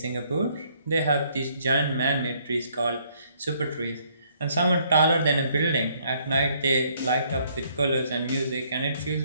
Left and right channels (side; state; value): both; inverted; correlation -0.66